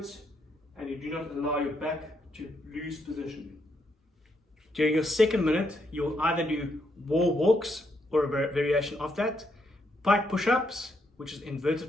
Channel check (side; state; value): both; normal; correlation 0.77